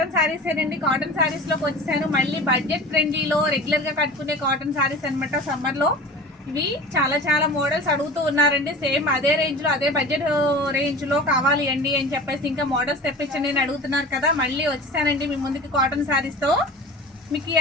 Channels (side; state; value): both; normal; correlation 0.36